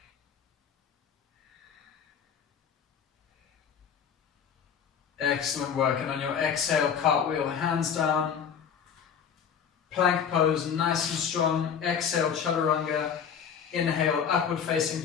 Excellent work. And on your exhale, cartwheel, hands down. Plank pose, nice and strong. Exhale, chaturanga. Inhale, upward facing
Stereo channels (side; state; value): right; quieter; 7.5 dB